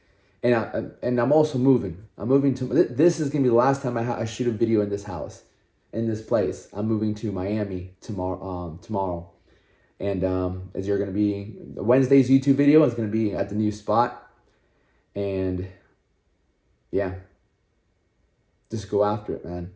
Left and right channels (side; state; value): both; identical; correlation 1.00